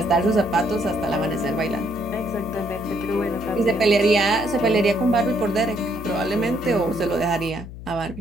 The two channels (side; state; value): left; noise; hum, 13 dB below the sound